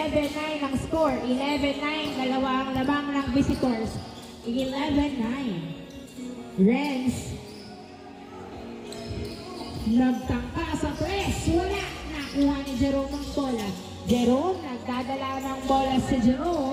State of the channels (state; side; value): identical; both; correlation 1.00